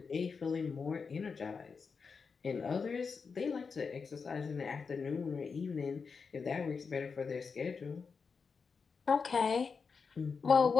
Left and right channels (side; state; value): right; quieter; 5.3 dB